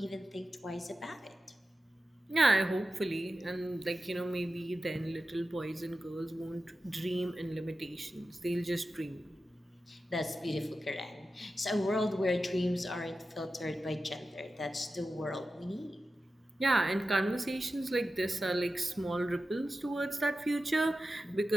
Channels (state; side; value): normal; both; correlation 0.93